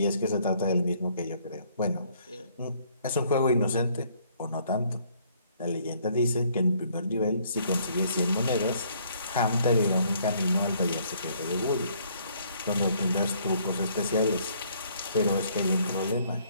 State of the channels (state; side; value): inverted; both; correlation -0.64